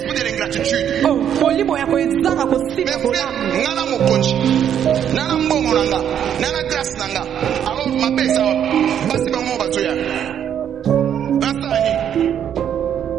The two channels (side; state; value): left; quieter; 9.3 dB